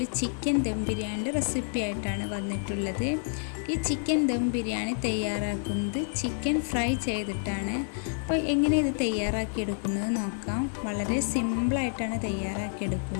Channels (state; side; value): silent; right; 59 dB below the other